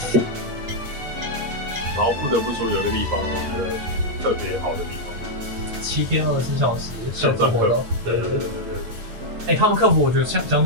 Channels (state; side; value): late; left; 8.8 ms